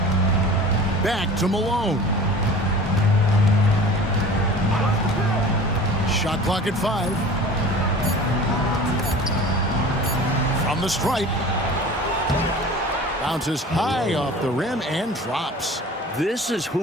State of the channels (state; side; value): normal; both; correlation 0.41